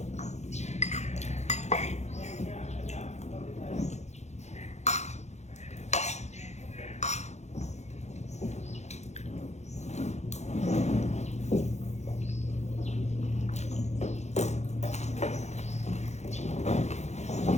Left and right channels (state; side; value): late; right; 0.33 ms